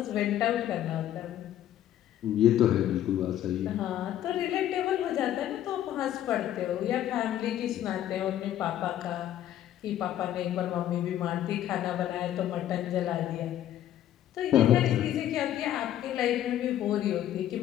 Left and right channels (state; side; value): quieter; right; 11.9 dB